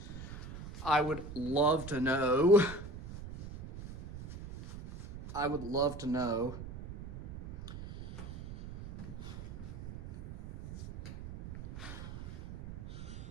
I would love to know. I would love to know.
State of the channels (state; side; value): noise; right; rumble, 10 dB below the sound